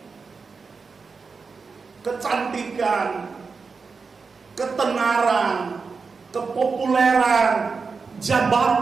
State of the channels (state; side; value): quieter; left; 4.8 dB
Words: Kecantikan, ketenaran, kepopuleran,